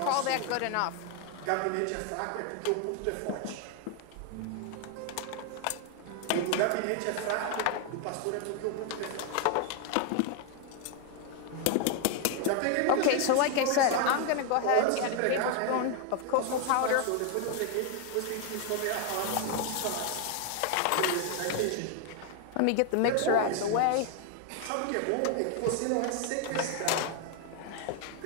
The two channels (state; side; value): different; both; correlation 0.00